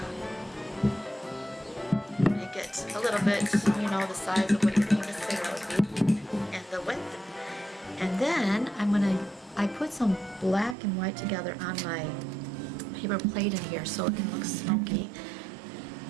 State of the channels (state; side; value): drops out; left; at 10.8 s